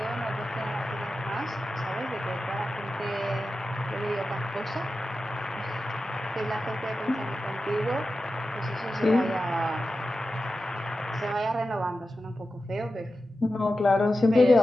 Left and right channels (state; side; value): normal; both; correlation 0.92